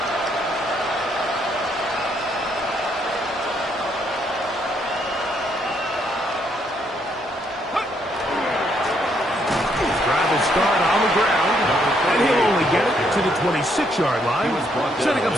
Drive will start on the ground, and he'll only get it to the 26-yard line, setting up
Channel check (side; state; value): both; normal; correlation 0.72